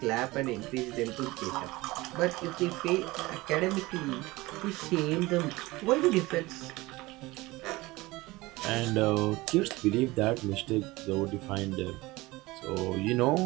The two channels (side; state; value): left; quieter; 20.7 dB